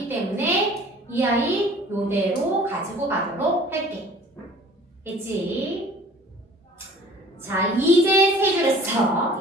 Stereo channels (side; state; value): both; normal; correlation 0.49